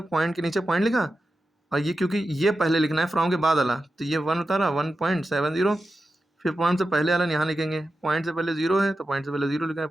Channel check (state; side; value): normal; both; correlation 0.91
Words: पॉइंट के नीचे पॉइंट लिखा, और ये क्योंकि ये पहले लिखना है फ्रॉम के बाद वाला, तो ये 1 उतारा 1.70, फिर पॉइंट से पहले वाला यहाँ लिखेंगे। पॉइंट से पहले 0 है तो पॉइंट से पहले 0 लिखा है,